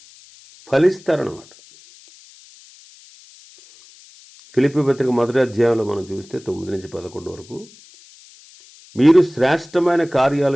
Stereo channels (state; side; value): noise; left; hiss, 24 dB below the sound